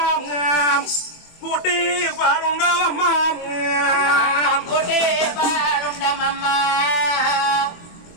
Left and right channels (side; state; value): right; late; 24 ms